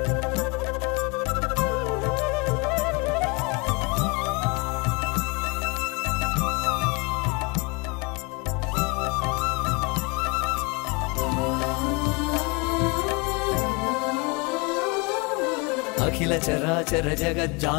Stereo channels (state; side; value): quieter; right; 28.4 dB